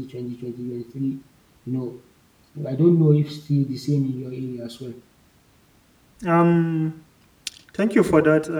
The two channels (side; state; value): both; identical; correlation 1.00